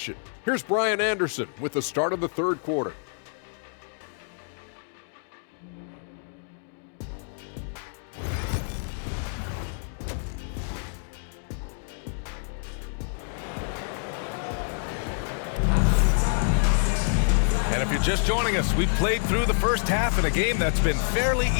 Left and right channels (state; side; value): silent; right; 60 dB below the other